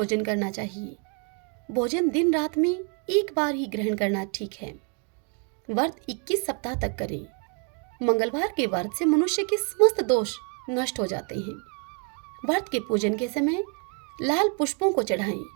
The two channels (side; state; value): left; quieter; 39.2 dB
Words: करना चाहिए। भोजन दिन रात में एक बार ही ग्रहण करना ठीक है। व्रत 21 सप्ताह तक करें। मंगलवार के व्रत से मनुष्य के समस्त दोष नष्ट हो जाते हैं। व्रत के पूजन के समय लाल पुष्पों को चढ़ाएं